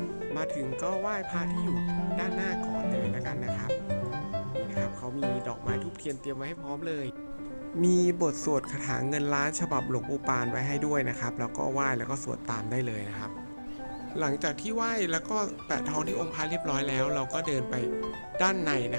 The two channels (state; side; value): inverted; both; correlation -1.00